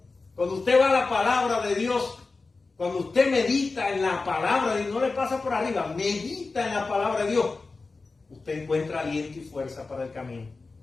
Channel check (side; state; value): right; quieter; 3.9 dB